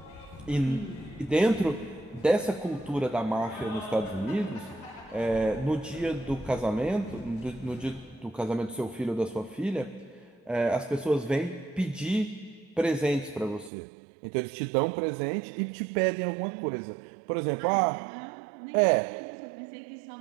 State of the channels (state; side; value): drops out; left; at 13.7 s